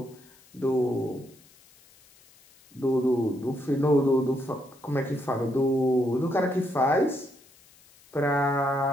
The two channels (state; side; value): noise; left; hiss, 28 dB below the sound